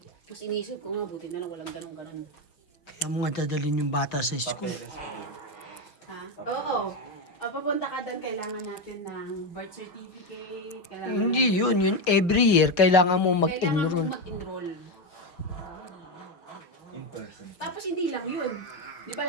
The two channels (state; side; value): late; right; 5.7 ms